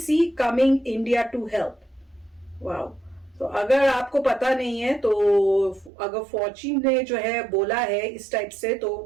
coming India to help. Wow. तो अगर आपको पता नहीं है तो अगर फॉची ने जो है बोला है इस टाइप से, तो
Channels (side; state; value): left; drops out; at 5.9 s